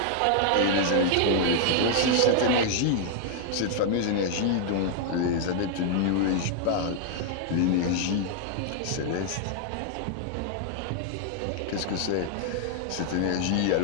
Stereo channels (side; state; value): both; different; correlation -0.01